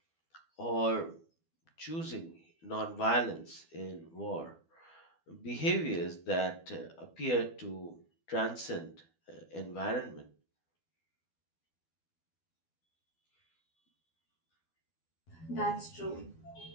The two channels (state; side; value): late; right; 12 ms